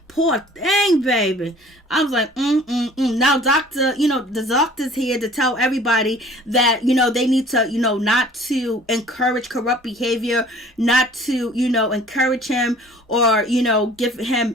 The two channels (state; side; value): normal; both; correlation 0.50